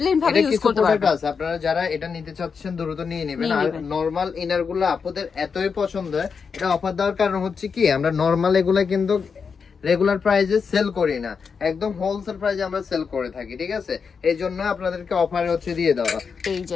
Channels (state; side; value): quieter; right; 5.8 dB